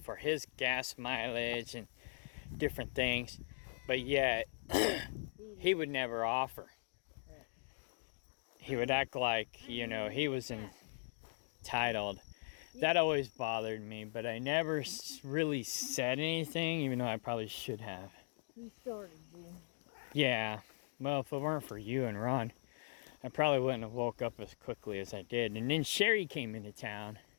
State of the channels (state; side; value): silent; right; digital silence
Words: his gas mileage and different things. But yet, he would never offer. He would act like, you know, he was entitled. That always bothered me, but I never really said anything, even though I probably should have. He started you. Yeah, well, if it weren't for you and Ron, I probably wouldn't have woke up as quickly as I did. And then Sherry came into town.